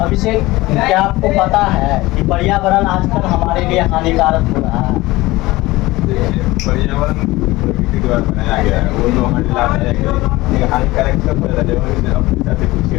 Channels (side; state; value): right; quieter; 19.5 dB